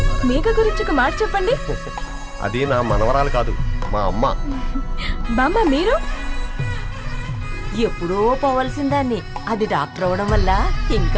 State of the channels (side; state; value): both; identical; correlation 1.00